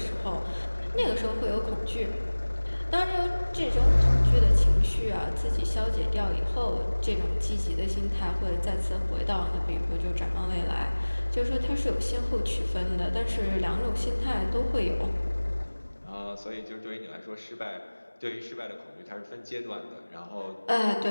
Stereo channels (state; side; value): inverted; both; correlation -1.00